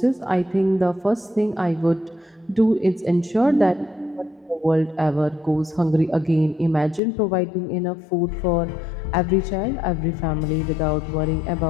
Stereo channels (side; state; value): right; drops out; at 7.0 s